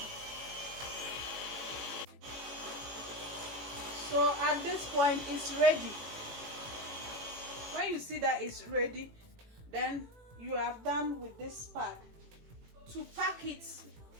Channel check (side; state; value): left; late; 18 ms